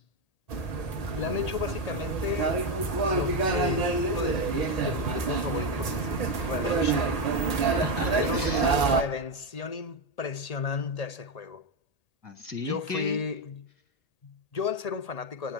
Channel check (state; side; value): late; right; 1.8 ms